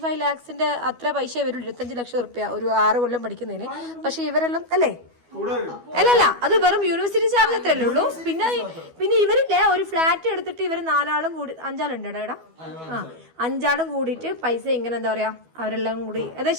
lakhs അത്ര പൈസ വരും, 25 ലക്ഷം റുപ്യ ഒരു 6 കൊല്ലം പഠിക്കുന്നതിന്. പക്ഷെ ഇവരെല്ലാം അല്ലേ, അല്ലല്ല അത് വെറും യൂണിവേഴ്സിറ്റി ചാർജ് അത്രയല്ലേ ഉള്ളൂ. പിന്നെ ഇവരില്ലേ ഒരു ഫ്ലാറ്റ് എടുത്തിട്ട് ഇവര് 4 ആളും കൂടി 5 ആളുണ്ട് എടാ. 5 ആളും കൂടിയിട്ട് പൈസ ഇങ്ങനെ എന്താ പറയാ, അവരെല്ലാം കൂടി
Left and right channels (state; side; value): late; left; 12 ms